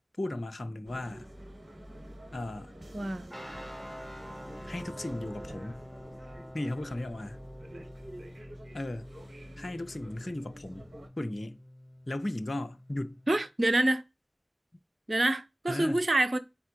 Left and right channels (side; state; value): both; normal; correlation 0.97